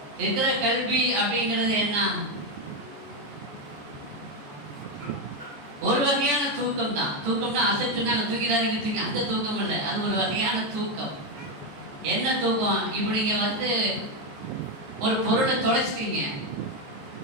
இருக்கிற கல்வி அப்படிங்கிறது என்ன? ஒரு வகையான தூக்கம் தான். தூக்கம்னா அசைச்சுனாங்க தூக்கிடாதீங்க தூக்கி, அந்த தூக்கம் இல்லை, அது ஒரு வகையான தூக்கம். என்ன தூக்கம்? இப்படி நீங்க ஒரு பொருளை தொலைச்சிட்டீங்க,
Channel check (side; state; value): left; late; 14 ms